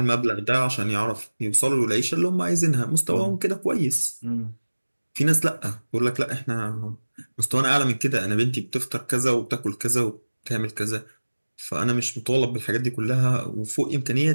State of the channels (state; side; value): inverted; both; correlation -1.00